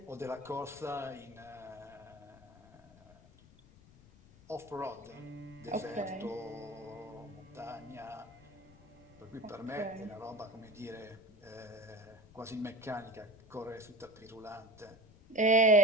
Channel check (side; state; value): left; noise; rumble, 24 dB below the sound